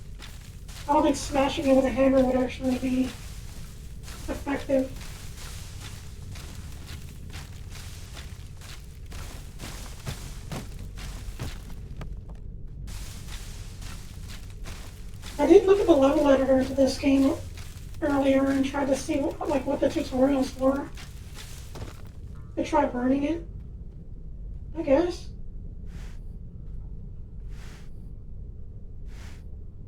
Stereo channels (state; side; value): identical; both; correlation 1.00